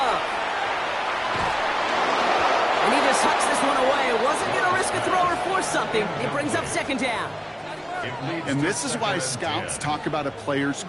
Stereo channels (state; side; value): identical; both; correlation 1.00